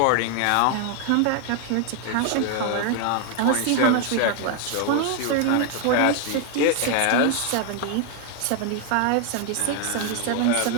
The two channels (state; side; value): different; both; correlation 0.01